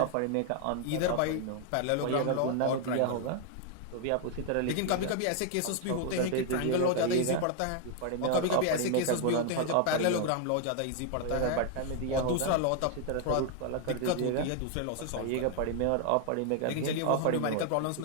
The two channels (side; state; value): both; different; correlation 0.00